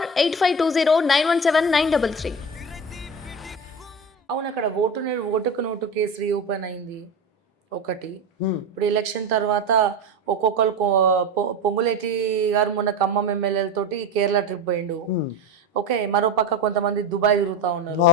8520917933. అవును, అక్కడ ఓటుకు నోటు కేసు రీఓపెన్ అయింది ఒకటి. ఇప్పుడు ఎలక్షన్ తర్వాత ఒక్కొక్కరు పొంగులేటి గారు మొన్న ఖమ్మం ఎమ్మెల్యేలతోటి కేరళ ట్రిప్ పోయిండు. ఓకే, మరో పక్క కొంతమంది దుబాయ్ తిరుగుతూ ఉన్నారు.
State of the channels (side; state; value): both; normal; correlation 0.24